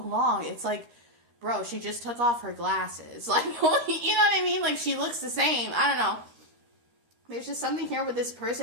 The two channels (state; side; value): late; left; 13 ms